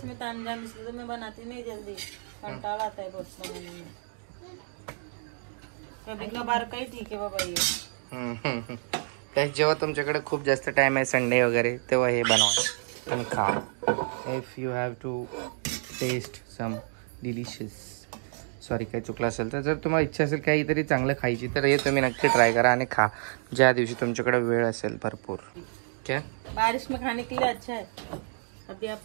तामझाम, इसलिए तो मैं बनाती नहीं जल्दी, कंटाला आता है बहुत बनाने में. कभी कभार काही ठीक आहे बाबा ये. तर जेव्हा तुमच्याकडे खूप जास्त टाइम आहे संडे वगैरे, तेव्हा हे बनवा आणि खा. If you have to taste some delicious, sorry काही चुकलं असेल तर, जर तुम्हाला इच्छा असेल काहीतरी चांगलं खायची तर हे तुम्ही नक्की ट्राय करा आणि खा ज्या दिवशी तुमच्याकडे वेळ असेल भरपूर. क्या बारिश में खाने के लिए अच्छा है. अभी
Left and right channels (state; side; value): silent; left; 59 dB below the other